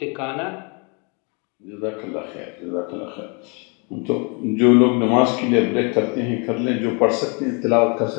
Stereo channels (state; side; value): quieter; right; 34.4 dB